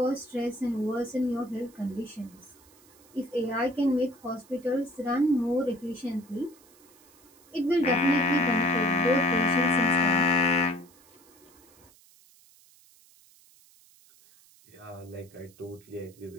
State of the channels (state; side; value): noise; right; hiss, 27 dB below the sound